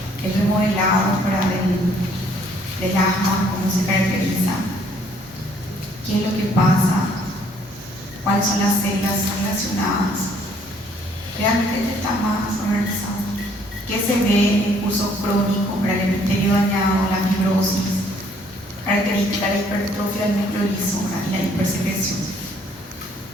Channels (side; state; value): both; normal; correlation 0.63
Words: El remodelado para del asma, cómo se caracteriza, qué es lo que pasa, cuáles son las células relacionadas. Realmente está más organizado. ¿Qué se ve? El curso crónico para el epitelio dañado, la fibrosis, característica de la hipertrofia del núcleo liso y la hipersecreción.